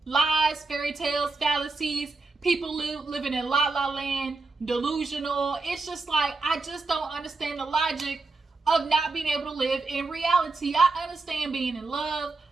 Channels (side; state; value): left; quieter; 3.8 dB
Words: lies, fairy tales, fallacies, people living in la la land, delusional. It's just like, I just don't understand the logic of not being able to live in reality. I understand being in love,